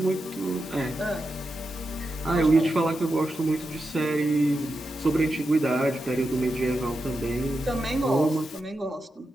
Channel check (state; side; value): normal; both; correlation 0.88